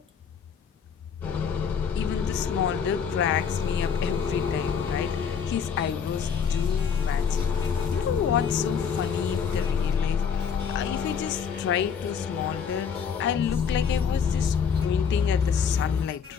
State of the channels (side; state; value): right; quieter; 6.8 dB